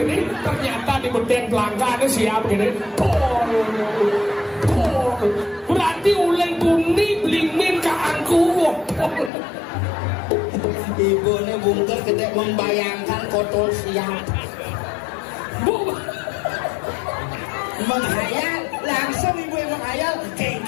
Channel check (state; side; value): drops out; right; at 9.3 s